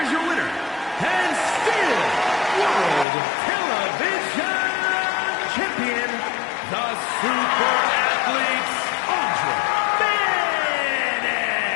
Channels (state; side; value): drops out; right; at 3.1 s